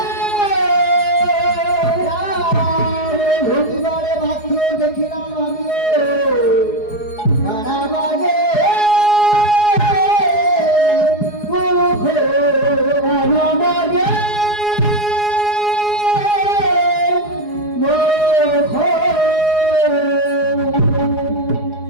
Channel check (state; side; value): late; right; 4.8 ms